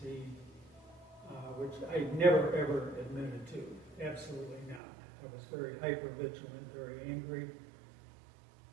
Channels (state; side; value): drops out; left; at 4.8 s